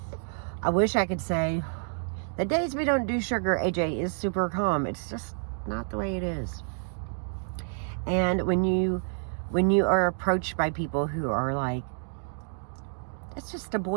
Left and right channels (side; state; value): left; silent; 59 dB below the other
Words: I wish I could say the days we don't do sugar, AJ is super calm. It's just not the way it is. And when you are approached by people who are like, it's just a